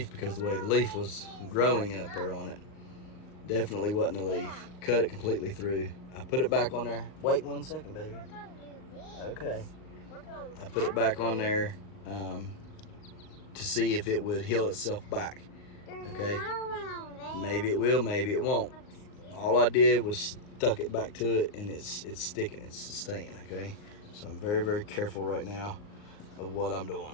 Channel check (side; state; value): right; late; 39 ms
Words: because the way the leaf was growing up there on it. Definitely wasn't the leaf. Cut it completely through. I put it back on there. Wait 1 second, baby. Okay. I put it back on there to see if it would heal itself back. Okay. Maybe it will, maybe it won't. All I did was stuck it back to it, and it's sticking, it's staying. Okay. So I'm very, very careful right now of what I'm